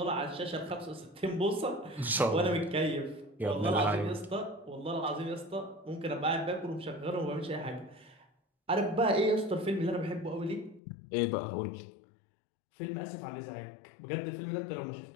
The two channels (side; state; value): right; drops out; at 10.8 s